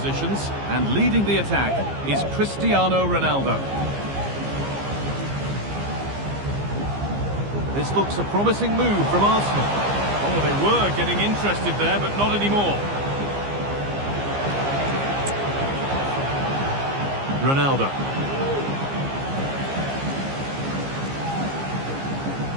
and leading the attack is Cristiano Ronaldo. This looks a promising move from Arsenal. Oh, they were getting interested there, but not anymore. Ronaldo.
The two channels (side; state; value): left; late; 15 ms